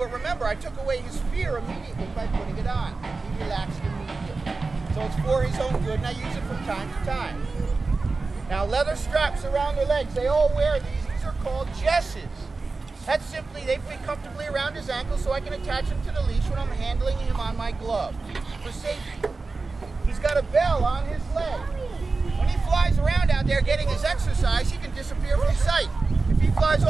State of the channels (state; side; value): quieter; left; 3.9 dB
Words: remember, I took away his fear immediately by putting it on. He relaxed immediately. So it's for his own good, and I use it from time to time. Now, leather straps around their legs. They all wear these. These are called jesses. That's simply, they fit comfortably around his ankles so I can attach him to the leash when I'm handling him on my glove for safety. He's got a bell on his leg. When he flies around out out there getting his exercise, he can disappear from sight. If he flies